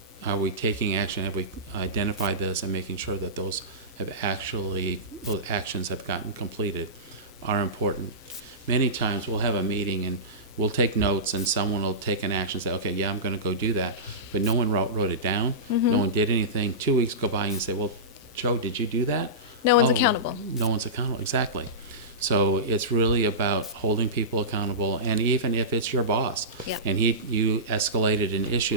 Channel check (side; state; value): both; normal; correlation -0.19